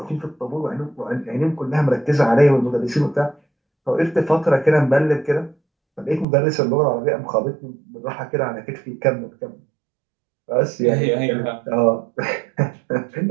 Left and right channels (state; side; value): drops out; left; at 6.2 s